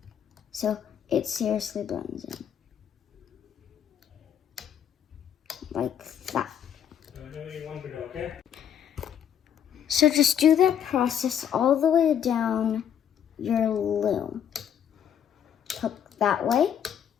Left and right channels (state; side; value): quieter; right; 9.0 dB